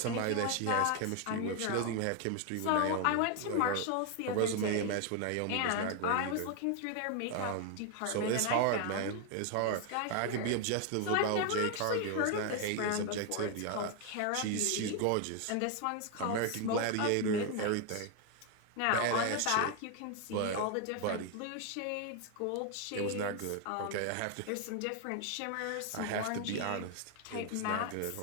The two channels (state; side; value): different; both; correlation 0.01